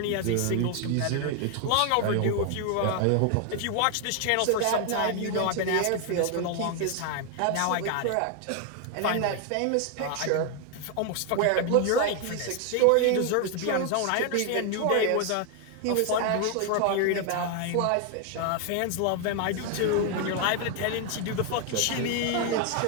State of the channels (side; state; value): both; different; correlation 0.01